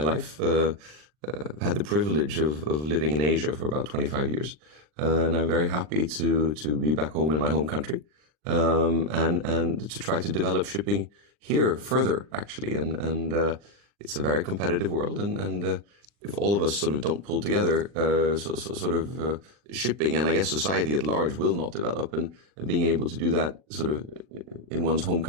life. I've had the privilege of living in Asia for about 25 years, and I'm very happy to be back home in my home country. And to try to develop shipping here further, actually. And it's a very competitive world. And if all of us sort of don't pull together, shipping and I guess society at large will not develop. And being able to do that sort of in one's home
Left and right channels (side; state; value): left; late; 40 ms